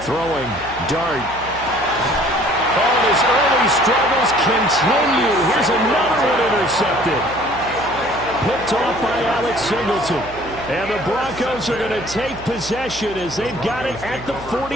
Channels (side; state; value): right; noise; hum, 16 dB below the sound